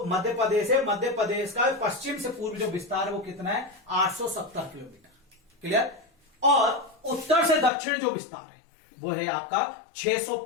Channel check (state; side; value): drops out; right; at 7.7 s